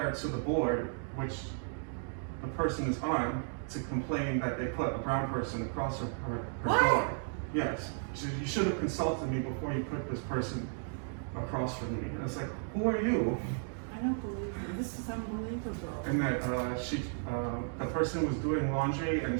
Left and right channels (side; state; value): left; silent; 55 dB below the other